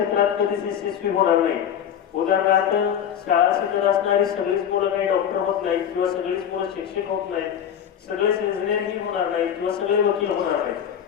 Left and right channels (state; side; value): quieter; right; 9.1 dB